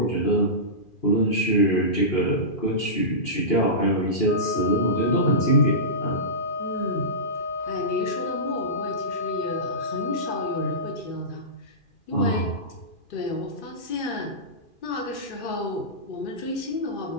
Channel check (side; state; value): right; late; 2.4 ms